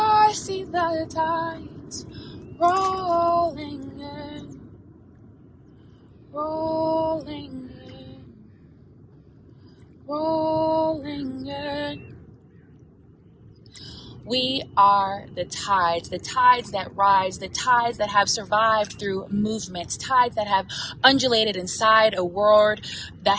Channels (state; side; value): identical; both; correlation 1.00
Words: see the tides rolling in, rolling in, rolling in. We are the tides that rise, the tides that have survived through movements, tides that have undulated inside a world that